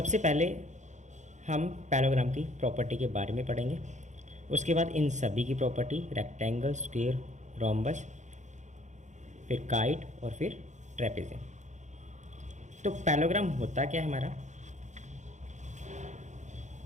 पहले हम पैरेललोग्राम की प्रॉपर्टी के बारे में पढ़ेंगे, उसके बाद इन सभी की प्रॉपर्टी, रेक्टेंगल, स्क्वायर, रोम्बस, फिर काइट और फिर ट्रेपेजियम। तो पैरेललोग्राम होता क्या है हमारा।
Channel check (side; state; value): left; late; 0.35 ms